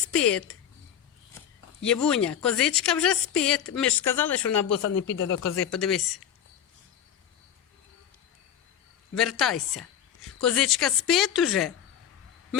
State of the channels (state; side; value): quieter; right; 9.5 dB